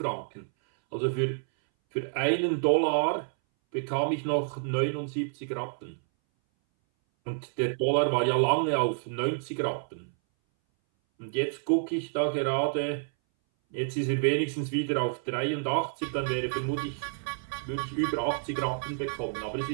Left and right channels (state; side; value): silent; left; 58 dB below the other